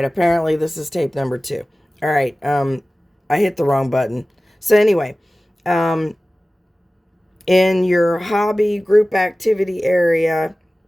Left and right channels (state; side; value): normal; both; correlation 0.97